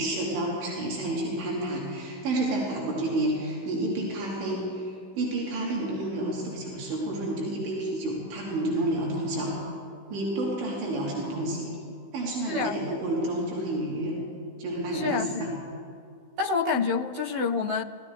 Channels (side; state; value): left; late; 16 ms